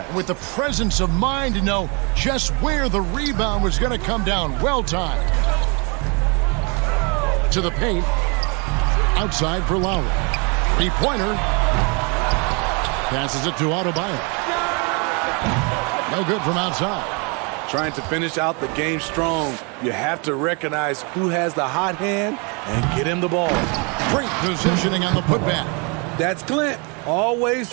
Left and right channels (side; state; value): left; quieter; 32.7 dB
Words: With the presence of mind to know just where the rebound was going to come down. Well timed. To the paint. Outside for Lowry. 3-pointer. Passes it to Adebayo. No good from outside. Trying to finish out the game strong. You have to recognize who has the hot hand and get him the ball. Great positioning on the putback. That's Clint. Always